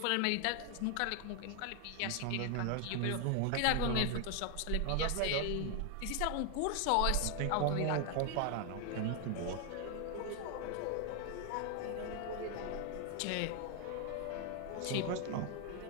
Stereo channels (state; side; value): different; both; correlation 0.00